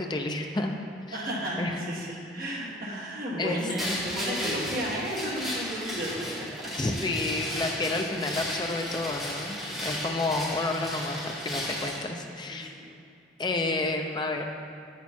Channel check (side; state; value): both; normal; correlation 0.42